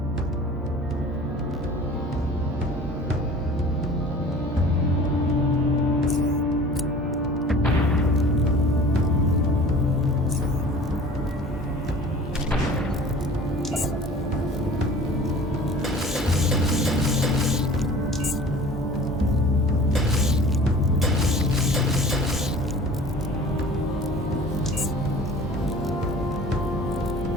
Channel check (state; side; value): normal; both; correlation 0.44